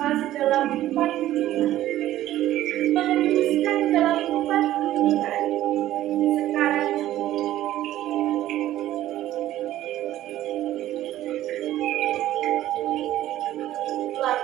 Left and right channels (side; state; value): left; quieter; 13.9 dB